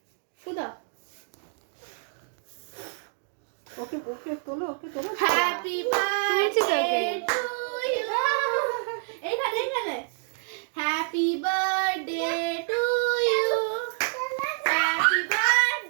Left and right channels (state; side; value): silent; left; digital silence